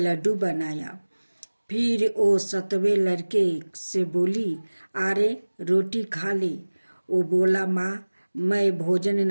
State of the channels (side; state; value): both; inverted; correlation -1.00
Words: बनाया। फिर वो 7वें लड़के से बोली, अरे रोटी खा ले। वो बोला, माँ मैं भोजन